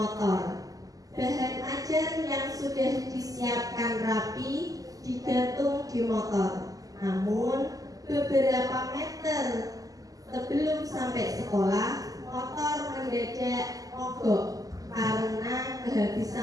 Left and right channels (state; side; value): late; left; 0.17 ms